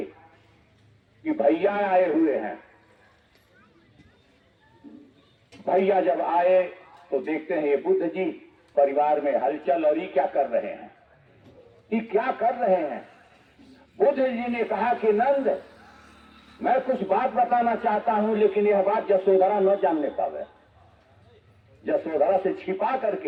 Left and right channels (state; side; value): identical; both; correlation 1.00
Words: कि भैया आए हुए हैं। भैया जब आए तो देखते हैं ये बुद्ध जी परिवार में हलचल, और ये क्या कर रहे हैं, ये क्या कर रहे हैं। बुद्ध जी ने कहा कि नंद, मैं कुछ बात बताना चाहता हूं, लेकिन यह बात यशोधरा न जानने पावे। यशोधरा से छिपा